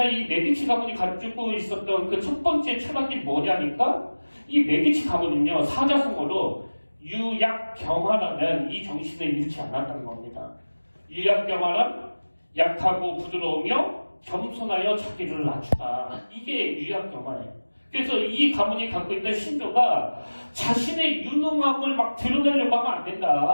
이 메디치 가문이 가지고 있었던 그 첫 번째 철학이 뭐냐니까 이 메디치 가문은요 사자성어로 유약경화라는 이 정신을 잃지 않았다는 겁니다. 유약경화란 약하고 부드러우며 겸손하여 자기를 낮추다. 이게 유약경화예요. 그래서 이 가문이 갖고 있던 신조가 자신의 유능함을 막 드러내려고 하면 안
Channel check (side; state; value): both; inverted; correlation -1.00